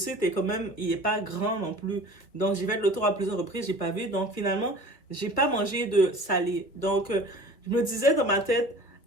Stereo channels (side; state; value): right; late; 1.6 ms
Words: est quand même, il est pas grand non plus. Donc, j'ai fait le tour à plusieurs reprises, j'ai pas vu. Donc, finalement, j'ai pas mangé de salé. Donc, je me disais dans ma tête